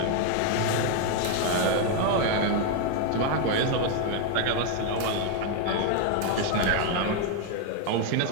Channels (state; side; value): different; both; correlation 0.01